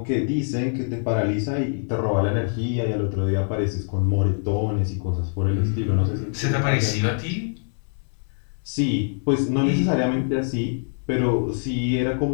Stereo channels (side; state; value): right; silent; 63 dB below the other